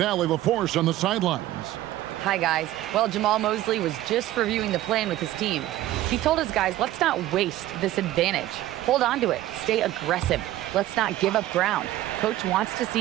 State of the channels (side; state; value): left; quieter; 14.8 dB